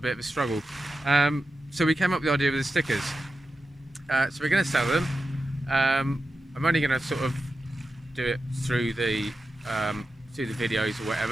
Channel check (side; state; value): both; normal; correlation 0.91